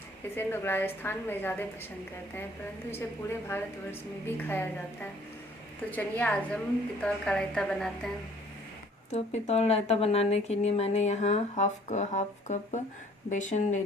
इसे लोग राजस्थान में ज़्यादा पसंद करते हैं, परंतु इसे पूरे भारतवर्ष में भी खाया जाता है। तो चलिए आज हम पितौल का रायता बनाते हैं। तो पितौल रायता बनाने के लिए मैंने यहाँ हाफ कप बेसन ले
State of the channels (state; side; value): normal; both; correlation 0.56